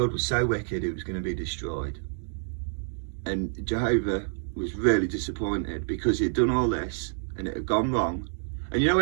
was so wicked it was going to be destroyed. And Jehovah was really disappointed because he'd done all this and it had gone wrong. And you know,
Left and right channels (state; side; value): silent; left; digital silence